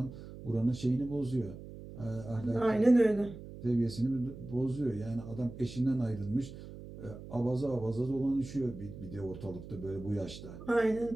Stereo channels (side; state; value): right; noise; hum, 13 dB below the sound